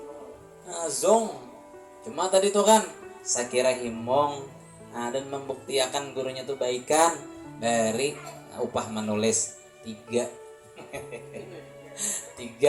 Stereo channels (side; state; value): both; identical; correlation 1.00